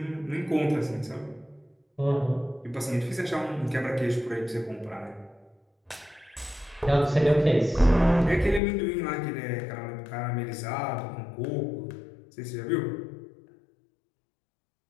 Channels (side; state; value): right; drops out; at 8.6 s